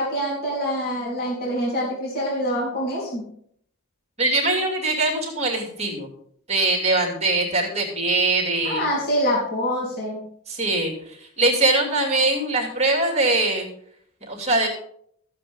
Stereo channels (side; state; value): both; normal; correlation -0.08